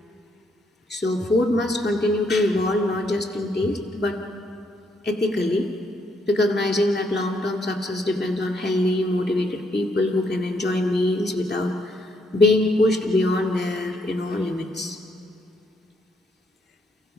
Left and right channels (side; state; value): both; normal; correlation 0.73